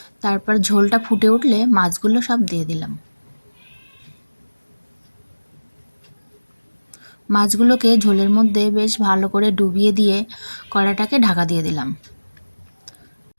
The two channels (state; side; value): inverted; both; correlation -1.00